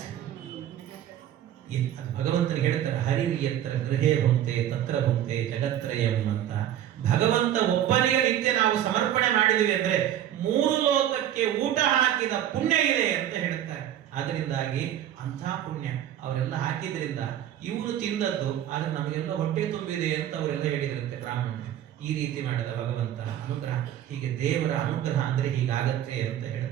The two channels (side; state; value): left; quieter; 11.2 dB